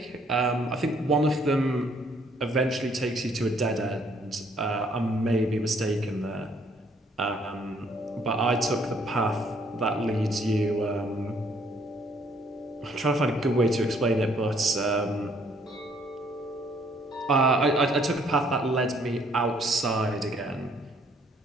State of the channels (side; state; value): both; normal; correlation 0.65